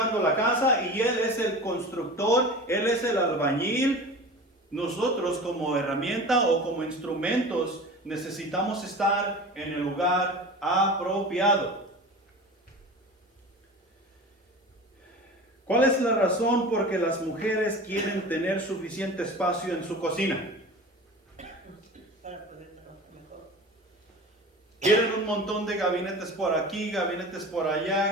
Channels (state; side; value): normal; both; correlation 0.35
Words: la casa y Él es el constructor, Él es el albañil, nosotros como herramienta o como instrumentos necesitamos estar en el lugar apropiado. ¿Cuál es la razón por que las mujeres quieren tener suficiente espacio en su cocina? Para poder trabajar mejor. Quieren un montón de gabinetes por aquí, gabinetes por